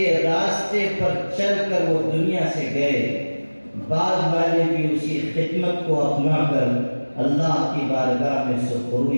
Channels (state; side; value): inverted; both; correlation -1.00